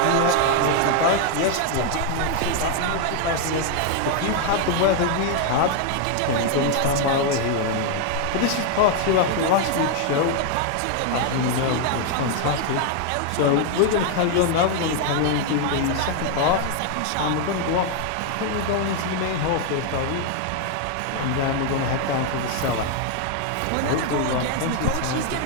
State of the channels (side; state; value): both; different; correlation 0.00